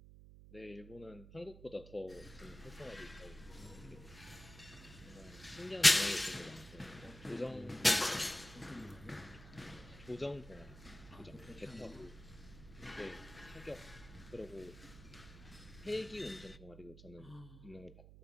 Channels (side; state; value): right; noise; hum, 17 dB below the sound